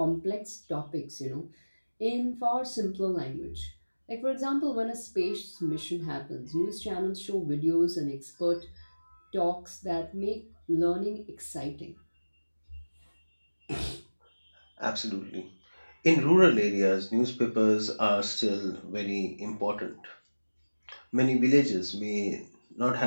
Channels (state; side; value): inverted; both; correlation -1.00